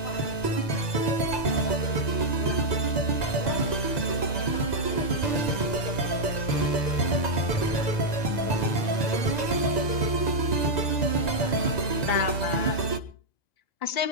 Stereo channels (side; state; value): right; late; 2.0 ms